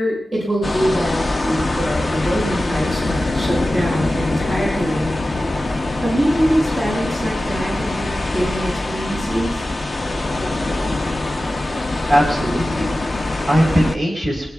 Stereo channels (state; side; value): normal; both; correlation 0.95